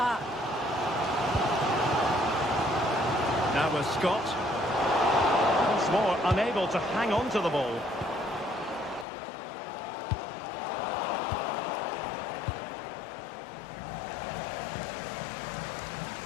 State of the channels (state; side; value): drops out; right; at 9.1 s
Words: Now with Scott. More unable to hang on to the ball.